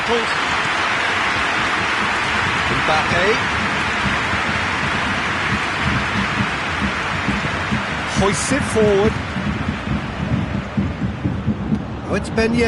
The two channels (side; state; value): both; identical; correlation 1.00